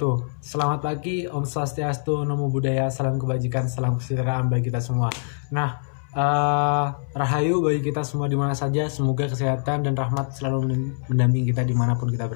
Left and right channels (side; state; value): right; silent; 63 dB below the other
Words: Selamat pagi, Om Swastiastu, Namo Buddhaya, salam kebajikan, salam kesejahteraan bagi kita semua. Nah, rahayu bagi kita semua di mana saja. Semoga kesehatan dan rahmat selalu mendampingi kita dimanapun kita